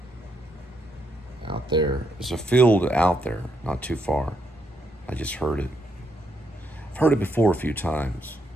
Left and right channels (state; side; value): normal; both; correlation 0.77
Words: Out there. There's a field out there, not too far. I just heard it. I've heard it before a few times.